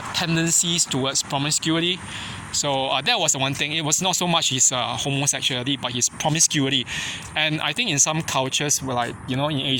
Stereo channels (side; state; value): both; identical; correlation 1.00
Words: tendencies towards promiscuity. So that was the one thing. It was not so much his homosexuality, but his promiscuity. And I think in some cultures, in